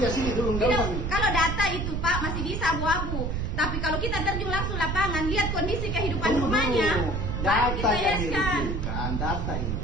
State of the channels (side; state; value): right; noise; rumble, 1 dB below the sound